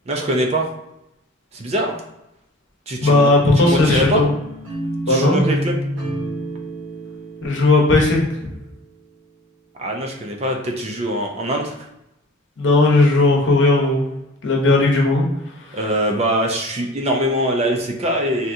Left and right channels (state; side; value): normal; both; correlation 0.43